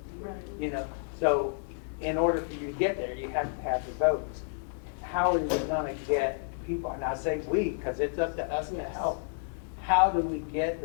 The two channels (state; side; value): silent; right; 57 dB below the other